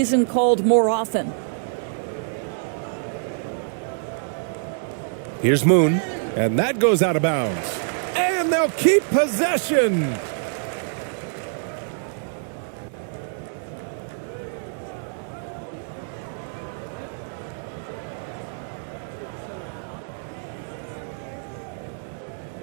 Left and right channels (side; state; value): left; silent; digital silence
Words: called more often. Here's Moon, and that goes out of bounds. And they'll keep possession.